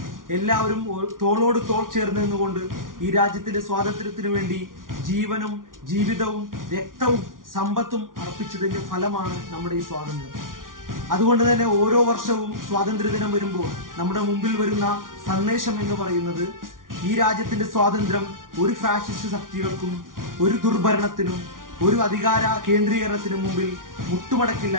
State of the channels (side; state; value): left; late; 0.89 ms